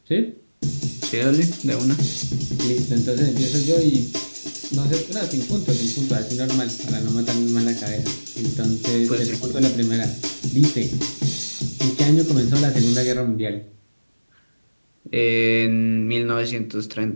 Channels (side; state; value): both; inverted; correlation -1.00